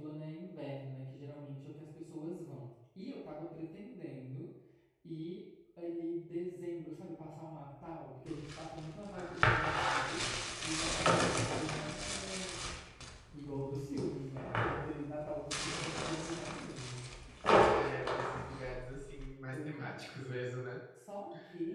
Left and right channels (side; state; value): both; identical; correlation 1.00